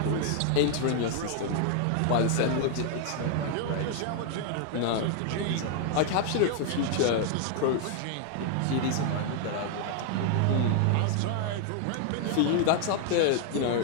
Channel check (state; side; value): different; both; correlation 0.00